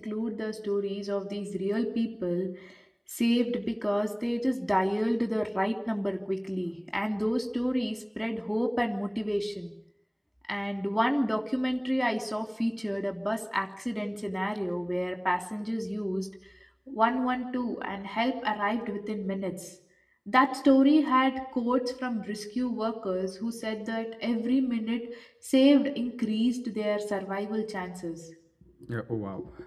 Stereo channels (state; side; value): identical; both; correlation 1.00